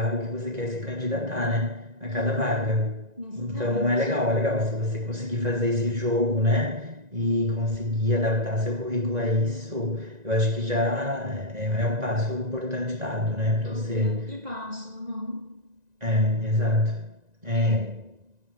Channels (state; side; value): late; left; 1.9 ms